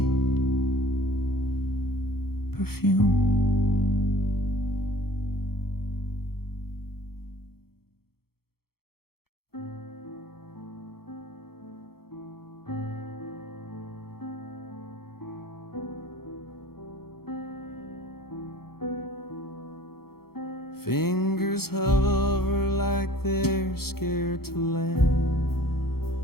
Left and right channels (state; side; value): late; right; 0.95 ms